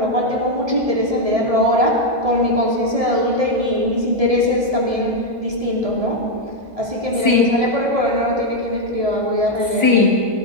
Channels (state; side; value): late; left; 1.5 ms